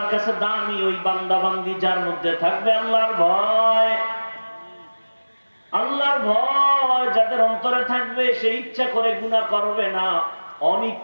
কাছে দামি ওই বান্দা বান্দি যার মধ্যে থাকবে আল্লাহর ভয়। আল্লাহর ভয় যাদের অন্তরে থাকবে, সে ইচ্ছা করে গুনাহ করবে না,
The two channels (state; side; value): inverted; both; correlation -1.00